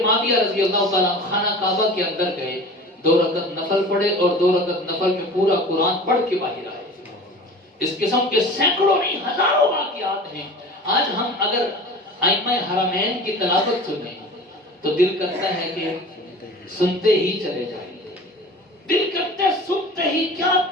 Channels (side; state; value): both; normal; correlation 0.39